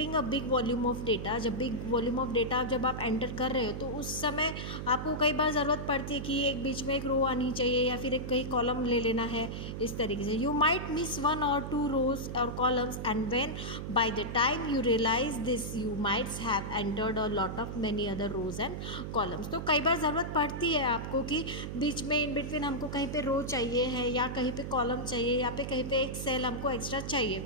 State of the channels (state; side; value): noise; right; hum, 6 dB below the sound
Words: a big volume of data, जब बिग वॉल्यूम ऑफ डेटा जब आप एंटर कर रहे हो तो उस समय आपको कई बार ज़रूरत पड़ती है कि एक बीच में एक रो आनी चाहिए या फिर एक कहीं कॉलम ले लेना है। इस तरीके से you might miss one or two rows or columns, and when by the time you realize this you might have entered a lot of many other rows and columns। तो कई बार ज़रूरत पड़ती है आपको कि बीच में इन बिटवीन हमको कहीं पे रो चाहिए है या कहीं पे कॉलम चाहिए या पे कहीं पे एक सेल हमको एक्स्ट्रा